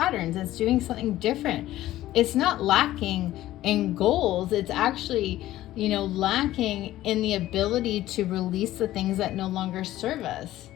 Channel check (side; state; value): right; quieter; 14.8 dB